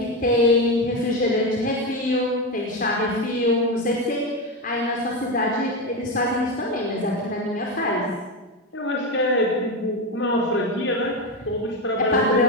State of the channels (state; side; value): normal; both; correlation 0.14